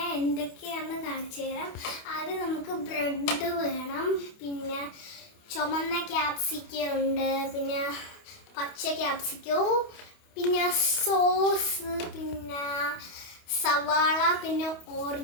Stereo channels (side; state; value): right; late; 28 ms